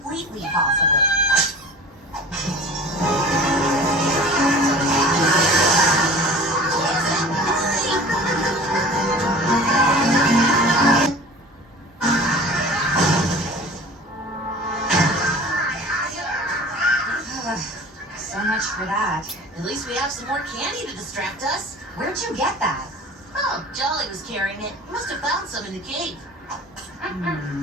possible. So much for that. At least we have some more candy to distract us. Where'd you get that? Oh, Jolly was carrying it. He must have found some in the cave.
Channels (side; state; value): both; normal; correlation 0.41